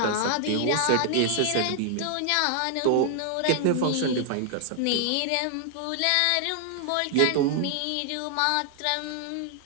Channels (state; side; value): different; both; correlation 0.00